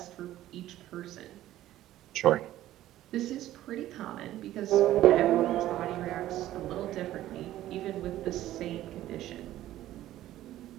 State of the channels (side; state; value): left; quieter; 14.0 dB